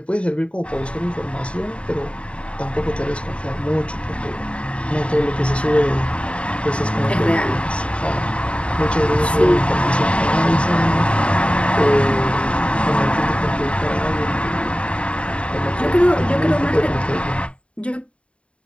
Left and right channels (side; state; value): right; late; 0.059 ms